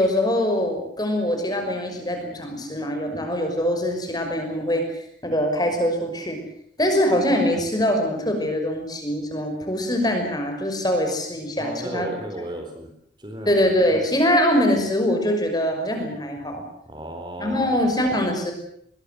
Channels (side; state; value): both; normal; correlation 0.47